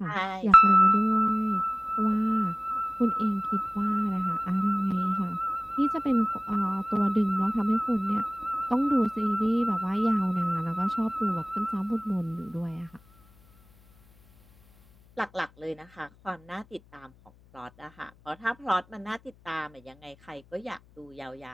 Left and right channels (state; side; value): noise; left; hum, 28 dB below the sound